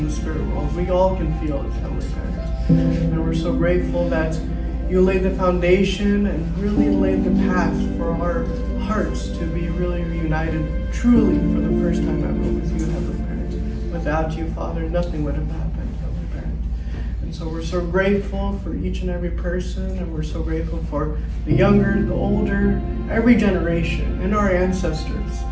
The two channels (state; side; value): identical; both; correlation 1.00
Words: the spirit world. We all can feel it, Heavenly Parent. And we're so grateful that you laid the foundation and really laid the path for our hearts to be really reunited truly for the first time ever with you, Heavenly Parent. Without you, Father, nothing would have happened, Heavenly Parent. And so we're so grateful for each and every person, and we're so grateful for the younger, the older, every generation, and our ancestors,